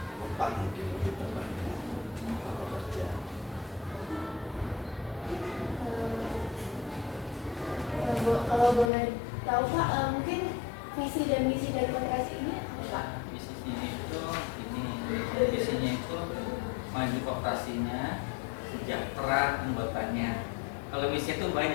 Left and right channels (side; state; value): right; drops out; at 8.9 s